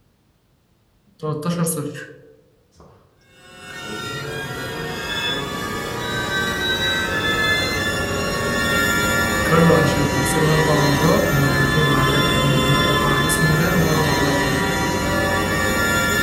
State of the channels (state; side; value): identical; both; correlation 1.00